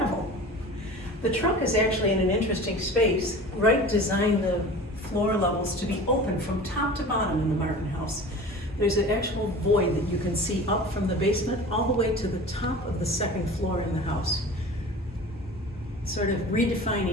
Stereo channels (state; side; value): normal; both; correlation 0.38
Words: The trunk is actually in an interesting space. Wright designed the floor levels to be open from top to bottom in the Martin House. There's an actual void that you can see up from the basement all the way to the top of the second floor in the house. Sort of